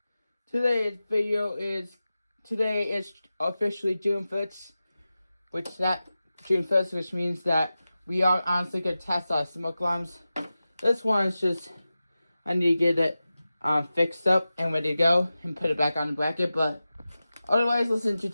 Today is officially June 1st, which means that we are honestly gonna test our smoke alarms. This one is just, I need to get it fixed up and ready to go and put it back on the bracket, but otherwise, let's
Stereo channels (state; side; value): inverted; both; correlation -0.94